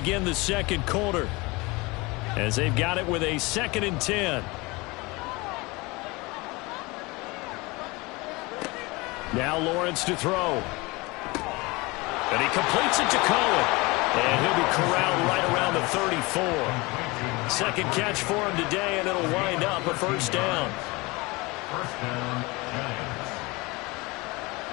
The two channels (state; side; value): quieter; right; 24.3 dB